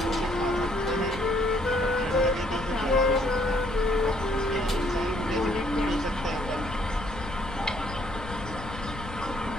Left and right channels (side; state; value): left; noise; rumble, 11 dB below the sound